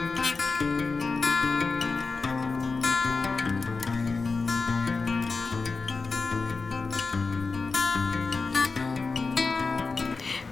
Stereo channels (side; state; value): right; quieter; 4.2 dB